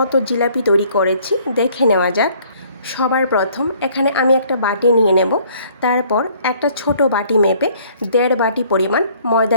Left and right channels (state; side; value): inverted; both; correlation -0.59